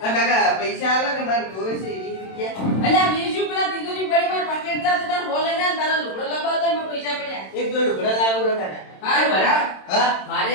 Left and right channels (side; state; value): right; late; 27 ms